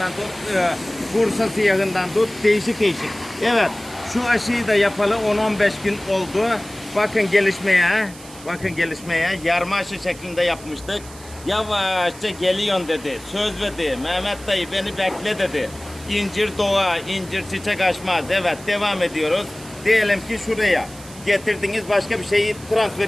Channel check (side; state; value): right; noise; hiss, 19 dB below the sound